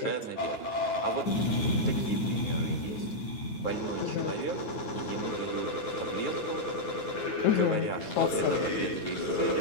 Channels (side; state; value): right; late; 9.4 ms